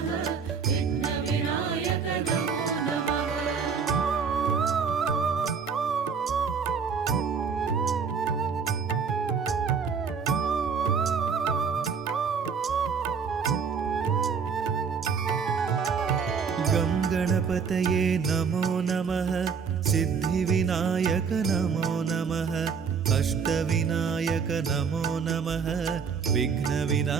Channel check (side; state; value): left; quieter; 6.1 dB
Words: विघ्नविनायक नमो नमः गणपतये नमो नमः सिद्धिविनायक नमो नमः अष्टविनायक नमो नमः